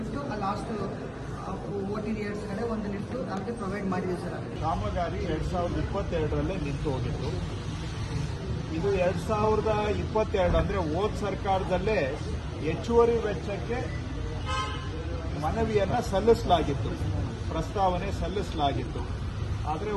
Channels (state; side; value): identical; both; correlation 1.00